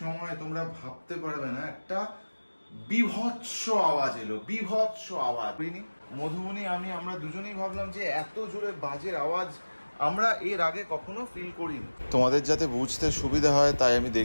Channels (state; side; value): inverted; both; correlation -1.00